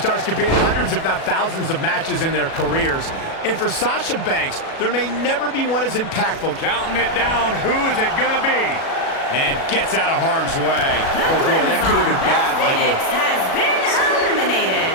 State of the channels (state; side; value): late; right; 37 ms